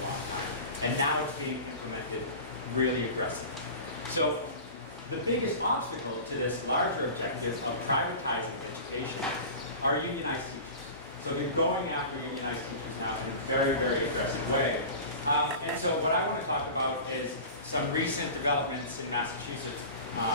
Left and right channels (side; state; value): both; inverted; correlation -0.35